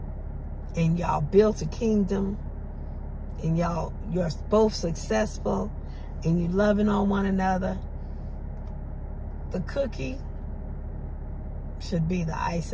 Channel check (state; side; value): identical; both; correlation 1.00